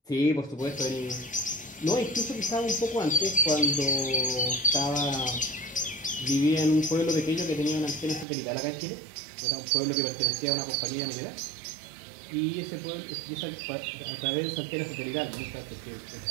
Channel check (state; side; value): drops out; left; at 8.2 s